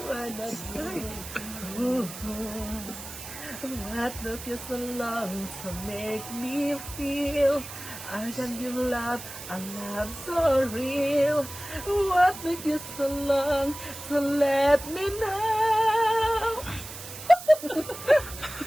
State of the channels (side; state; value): right; noise; hiss, 11 dB below the sound